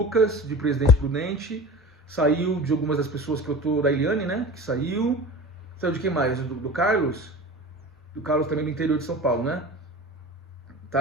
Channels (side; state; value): both; normal; correlation 0.36